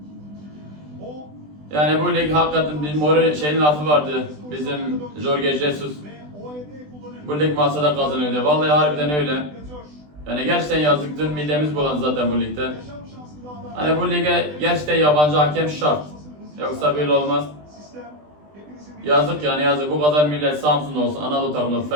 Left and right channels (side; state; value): left; late; 20 ms